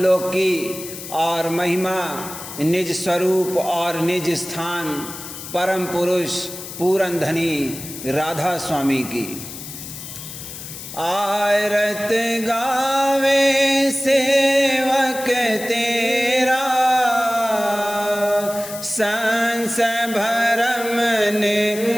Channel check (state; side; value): noise; left; hiss, 11 dB below the sound